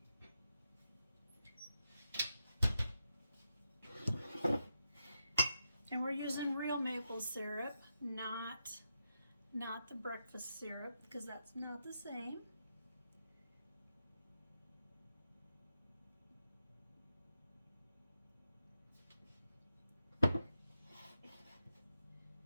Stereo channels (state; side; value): inverted; both; correlation -0.85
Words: And we're using real maple syrup, not the breakfast syrup, because that's not the same.